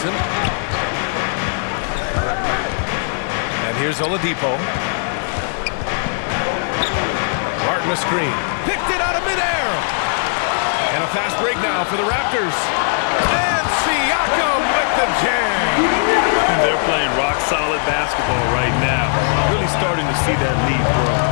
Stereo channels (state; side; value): silent; right; digital silence